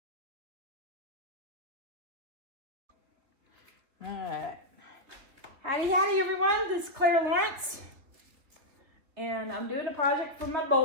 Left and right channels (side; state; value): left; late; 3.1 ms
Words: All right. Howdy, howdy, everyone. This is Clara Lawrence. And I'm doing a project for my